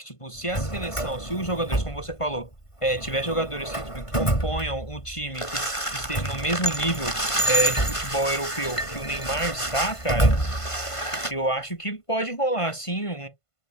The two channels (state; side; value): late; right; 1.5 ms